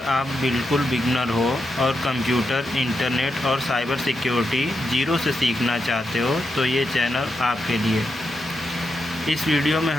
आप बिल्कुल बिगनर हो और कंप्यूटर, इंटरनेट और साइबर सिक्योरिटी जीरो से सीखना चाहते हो तो ये चैनल आपके लिए। इस वीडियो में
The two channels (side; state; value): both; normal; correlation 0.85